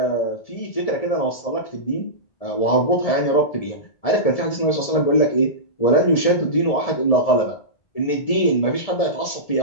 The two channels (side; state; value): right; late; 1.7 ms